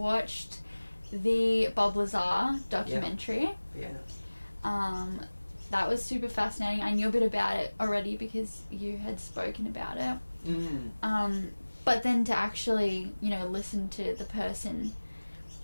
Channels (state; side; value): inverted; both; correlation -1.00